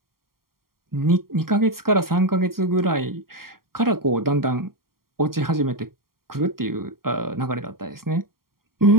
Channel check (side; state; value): left; late; 0.93 ms